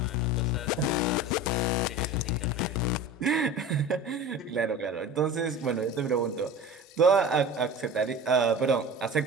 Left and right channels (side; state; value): both; normal; correlation 0.35